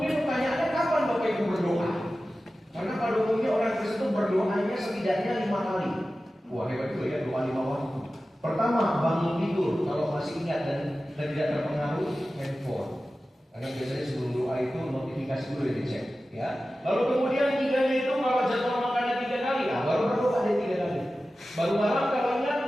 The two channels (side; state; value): both; normal; correlation 0.95